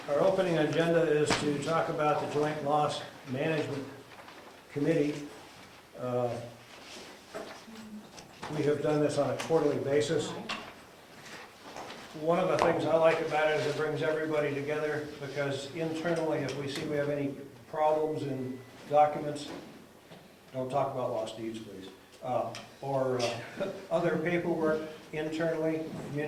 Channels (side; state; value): both; identical; correlation 1.00